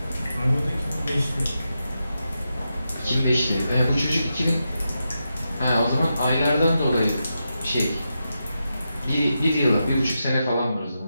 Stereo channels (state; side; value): inverted; both; correlation -0.87